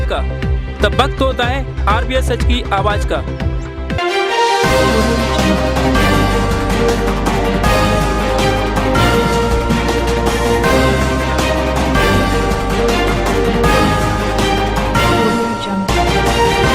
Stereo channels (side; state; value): both; identical; correlation 1.00